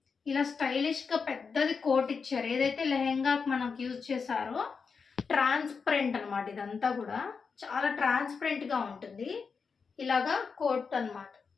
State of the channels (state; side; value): quieter; right; 5.4 dB